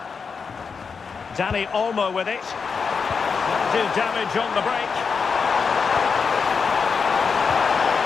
Dani Olmo with it. Do damage on the break.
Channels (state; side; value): quieter; right; 5.5 dB